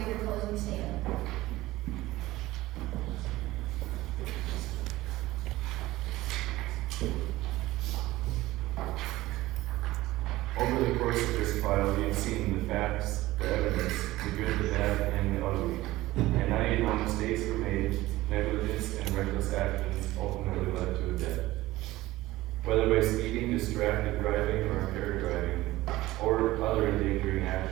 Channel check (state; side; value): quieter; left; 17.5 dB